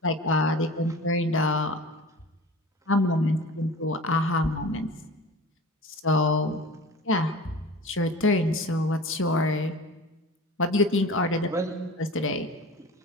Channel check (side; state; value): both; normal; correlation 0.38